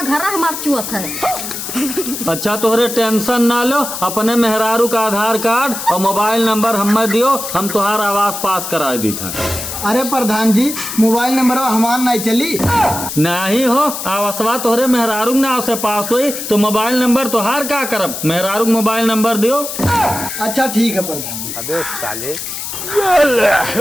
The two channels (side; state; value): left; noise; hiss, 6 dB below the sound